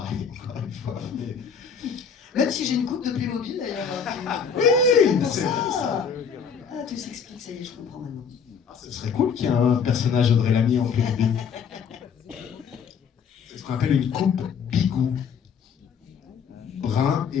encore une fois. Même si j'ai une coupe de Playmobil d'ailleurs. Oui, c'est pour c'est ça. Ah, tout s'explique, ça y est, je comprends maintenant. Ce serait cool qu'il y ait un personnage Audrey Lamy en Playmobil. C'est ce qu'on appelle une coupe bigou. Brun et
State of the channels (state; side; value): quieter; right; 6.6 dB